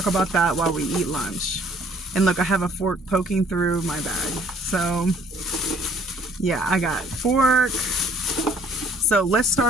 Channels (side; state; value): both; normal; correlation 0.59